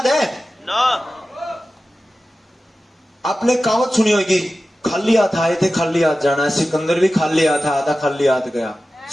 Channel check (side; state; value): both; normal; correlation 0.95